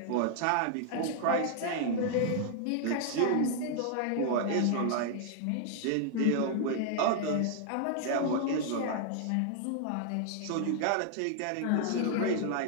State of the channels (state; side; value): different; both; correlation 0.00